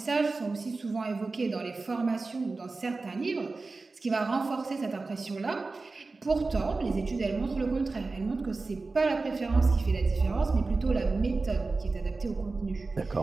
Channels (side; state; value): left; quieter; 3.7 dB